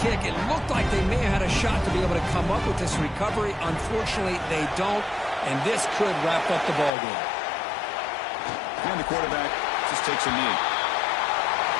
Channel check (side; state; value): right; drops out; at 6.9 s